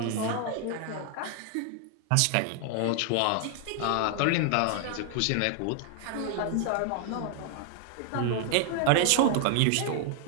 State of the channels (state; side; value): different; both; correlation 0.00